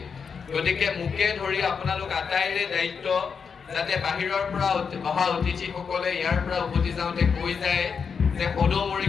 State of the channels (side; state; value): right; quieter; 6.1 dB